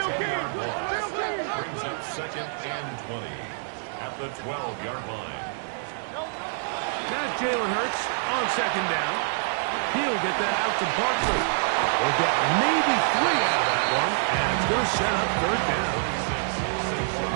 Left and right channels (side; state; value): left; silent; digital silence